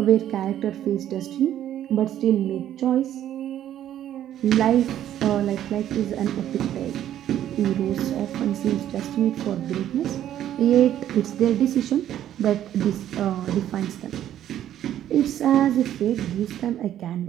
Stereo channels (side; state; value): left; quieter; 11.4 dB